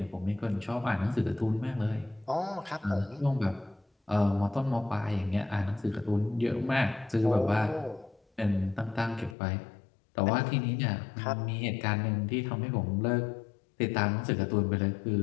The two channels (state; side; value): drops out; right; at 9.3 s